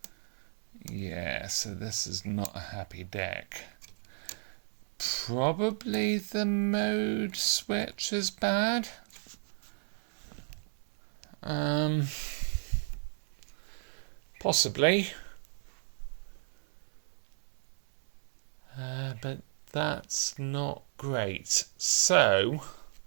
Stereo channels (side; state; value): left; silent; 56 dB below the other